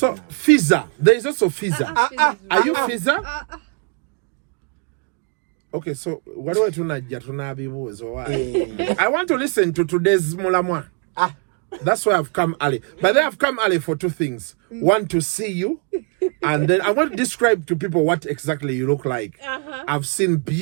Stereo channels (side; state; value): left; quieter; 37.3 dB